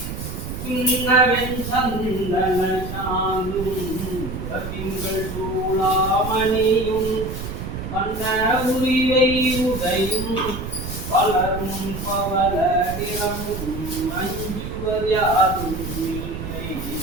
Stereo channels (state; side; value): noise; right; rumble, 7 dB below the sound